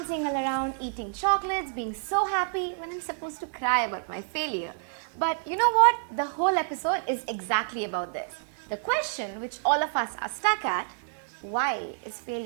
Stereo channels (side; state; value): left; silent; digital silence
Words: all around, eating chocolates, being so happy when I'm supposed to cry about my failure. But you know what? The whole episode is exactly about this. The question which all of us are stuck at: why is